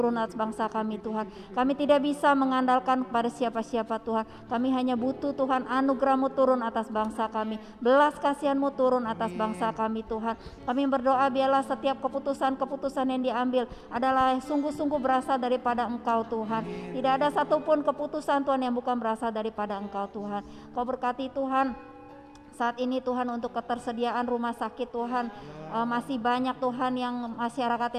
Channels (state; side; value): identical; both; correlation 1.00